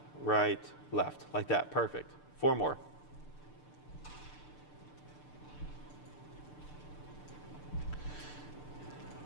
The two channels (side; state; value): right; late; 6.7 ms